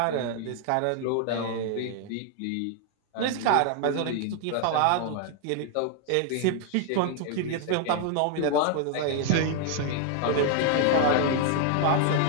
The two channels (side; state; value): both; different; correlation 0.00